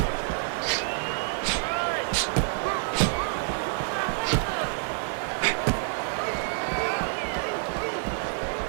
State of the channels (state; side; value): silent; left; digital silence